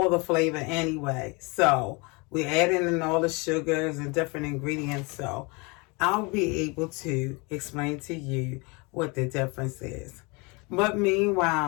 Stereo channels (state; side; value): quieter; right; 28.4 dB